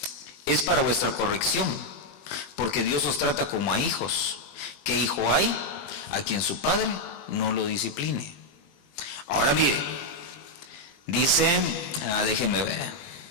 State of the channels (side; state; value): right; late; 20 ms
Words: es para vuestra corrección, porque Dios os trata como a hijos. ¿Qué hijo hay a quien su padre no lo discipline? Ahora mire, dice, déjenme ver,